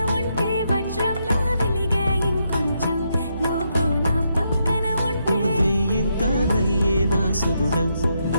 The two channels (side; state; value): both; inverted; correlation -0.80